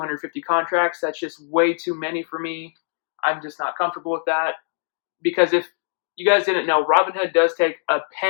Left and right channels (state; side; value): silent; right; digital silence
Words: contracts. That's just way too many for me. I'm just not comfortable with that. Because if you guys didn't know, Robinhood does take a